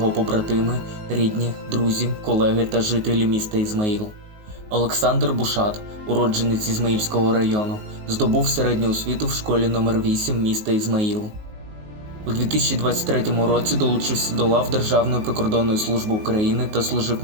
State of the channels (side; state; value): left; late; 19 ms